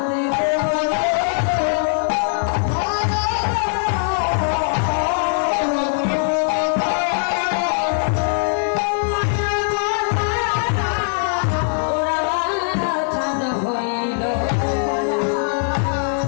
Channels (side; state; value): right; silent; digital silence